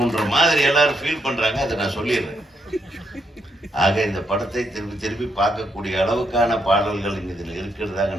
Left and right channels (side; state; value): both; normal; correlation 0.78